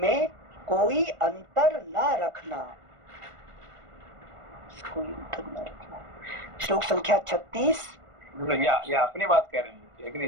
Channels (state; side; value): late; left; 1.5 ms